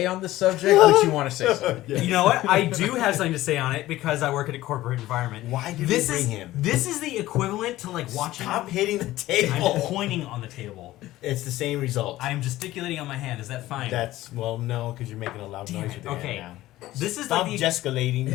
on this subject, but you want to say something. You know what? I do have something to say on it because I work in a corporate environment. Why did this we bring is him? This is the equivalent to like watching. Stop hitting the table. I'm pointing on the table. It's the same result. I am gesticulating on my hand. Is that fine? No, because you're making a loud Damn noise it. with your Okay. hand now. This is Stop like the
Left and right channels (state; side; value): quieter; right; 16.0 dB